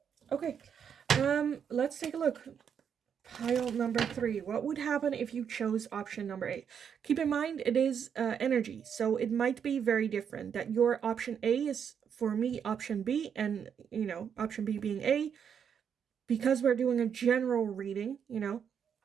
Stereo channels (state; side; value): quieter; left; 7.7 dB